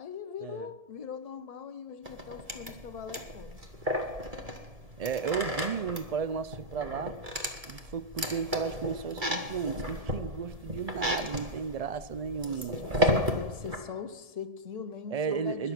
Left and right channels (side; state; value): left; late; 2.3 ms